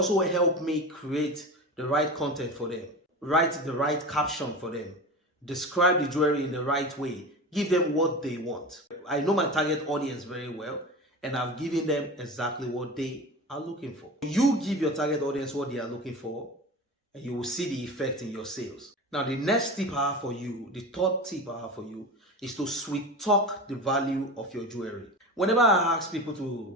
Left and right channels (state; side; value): normal; both; correlation 0.29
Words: helped me create the right content for them, write the right caption for them, describe the jewelry in the right way, give them what they want. I know my target audience very well, and I've given them exactly what they are looking for. You give your target audience what they are looking for, and you will see the effect in your sales. Now, the next tip I have for you, the third tip I have for you, is to sweet talk the value of your jewelry.